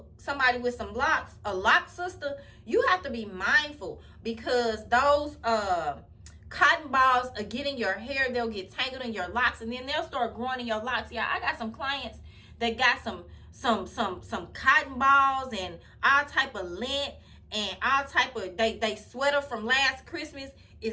somebody with some locks, a lock sister, you have to be mindful, because those cotton balls are getting your hair. They'll get tangled in your locks, and then they'll start growing in your locks. Yeah, I got some clients that got some cotton balls and all type of lint and all type of they sweater from last Christmas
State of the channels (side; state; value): both; identical; correlation 1.00